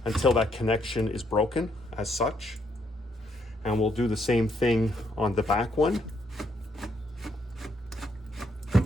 until that connection is broken as such. And we'll do the same thing on the back one.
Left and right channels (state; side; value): normal; both; correlation 0.73